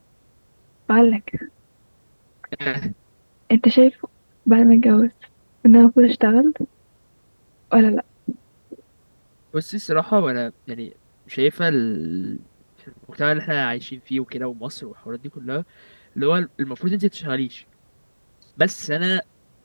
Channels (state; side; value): inverted; both; correlation -1.00